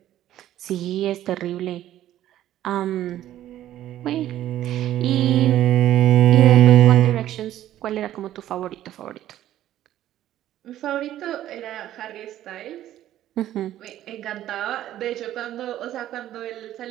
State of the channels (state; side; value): quieter; left; 12.8 dB